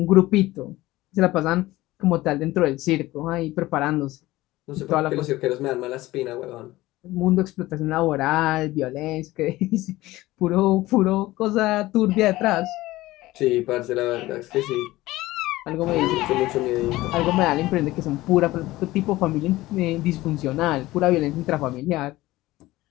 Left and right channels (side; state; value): right; quieter; 17.9 dB